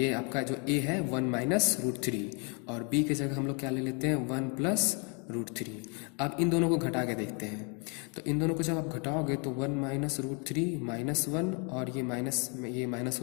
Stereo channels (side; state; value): right; quieter; 35.7 dB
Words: आपका जो ए है 1 माइनस रूट 3, और बी की जगह हम लोग क्या ले लेते हैं 1 प्लस रूट 3। अब इन दोनों को घटा के देखते हैं, तो इन दोनों को जब आप घटाओगे तो 1 माइनस रूट 3 माइनस 1, और ये माइनस